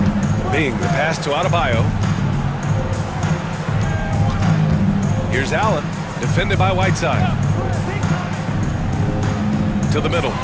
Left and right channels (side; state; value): both; identical; correlation 1.00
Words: Bing, the pass to Adebayo. Here's Allen, defended by Whiteside. To the middle